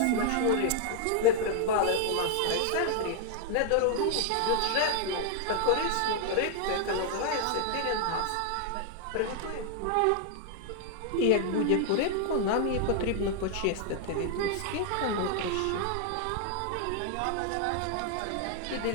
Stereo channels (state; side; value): different; both; correlation 0.00